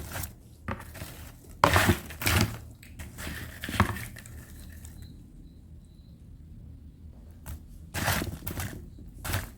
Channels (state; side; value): identical; both; correlation 1.00